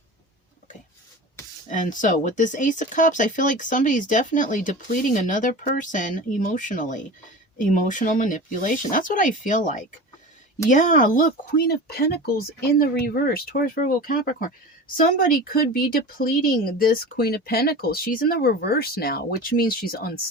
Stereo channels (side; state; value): both; normal; correlation 0.33